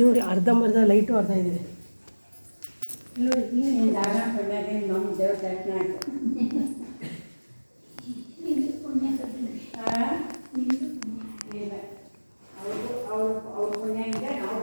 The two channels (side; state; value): both; inverted; correlation -1.00